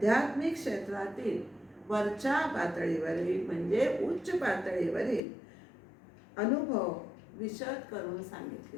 क्षेत्रातील वरच्या पातळीवरील म्हणजे उच्च पातळीवरील अनुभव विशद करून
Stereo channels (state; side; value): drops out; right; at 5.2 s